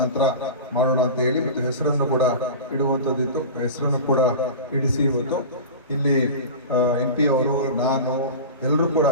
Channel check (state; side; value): inverted; both; correlation -0.30